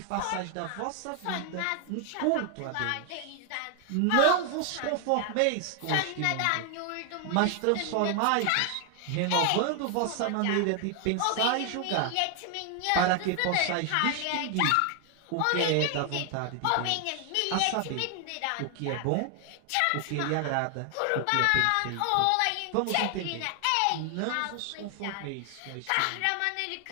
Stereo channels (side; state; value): both; different; correlation 0.00